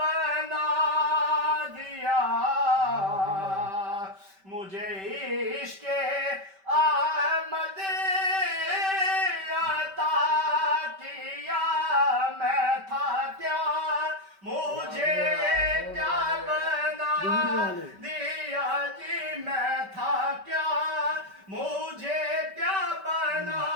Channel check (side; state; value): left; late; 5.2 ms